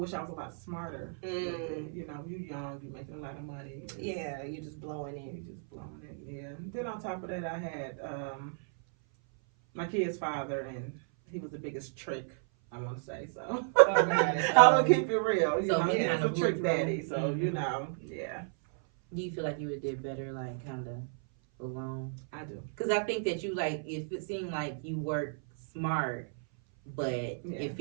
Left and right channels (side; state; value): left; silent; 56 dB below the other